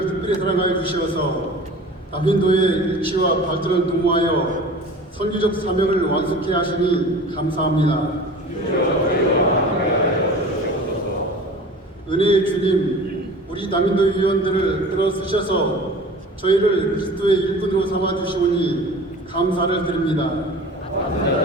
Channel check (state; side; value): normal; both; correlation 0.40